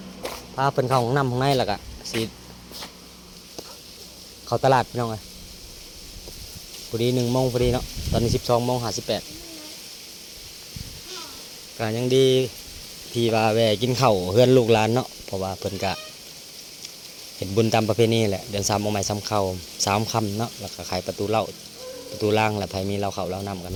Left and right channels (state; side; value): identical; both; correlation 1.00